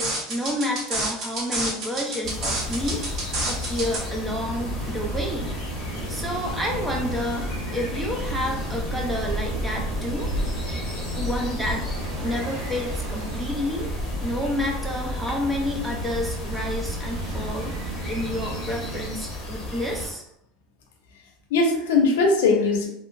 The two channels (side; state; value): both; normal; correlation 0.42